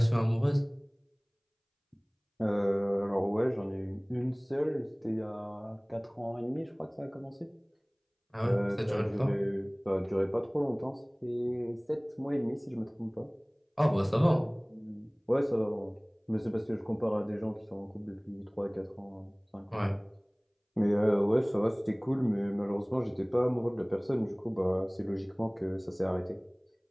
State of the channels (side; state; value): both; identical; correlation 1.00